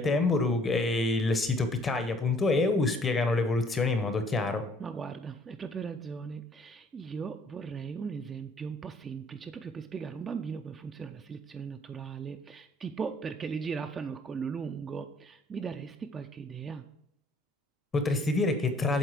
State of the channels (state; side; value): normal; both; correlation 0.60